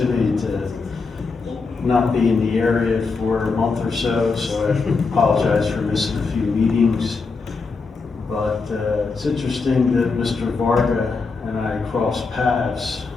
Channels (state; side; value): quieter; right; 4.4 dB